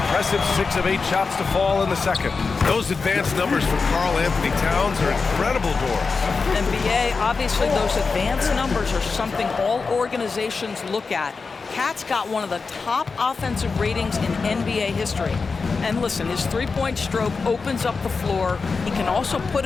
6 of 8 shots to fall in the second. Those advanced numbers for Karl Anthony Towns are incredible, Doris. NBA, obviously those advanced numbers are something all organizations look at. Cat's got one of the top offensive ratings in NBA history. And listen, his three-point stroke opens up the floor. He can also put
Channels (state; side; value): quieter; right; 4.6 dB